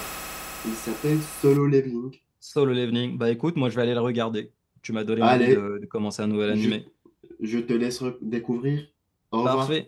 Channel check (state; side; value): identical; both; correlation 1.00